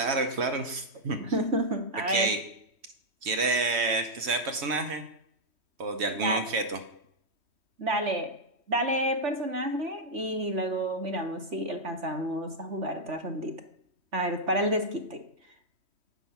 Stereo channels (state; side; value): late; left; 3.1 ms